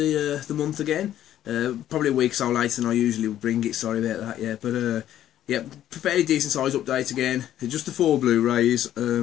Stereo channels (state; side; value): quieter; right; 11.8 dB